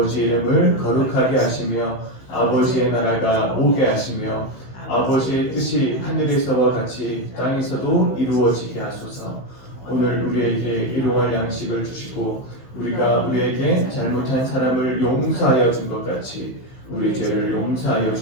이름을 거룩하게 하시며 아버지의 나라가 오게 하시며 아버지의 뜻이 하늘에서와 같이 땅에서도 이루어지게 하소서. 오늘 우리에게 일용할 양식을 주시고 우리에게 잘못한 사람을 용서하여 준 것 같이 우리 죄를 용서하여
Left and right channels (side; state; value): right; late; 15 ms